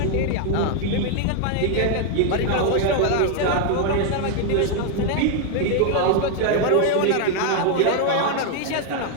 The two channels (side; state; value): both; different; correlation 0.00